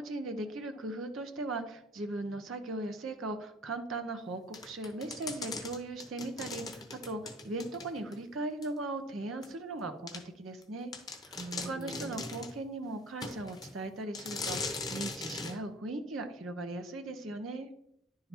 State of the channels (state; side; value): normal; both; correlation 0.45